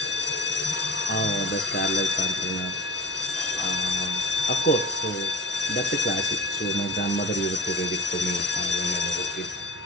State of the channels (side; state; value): both; normal; correlation 0.38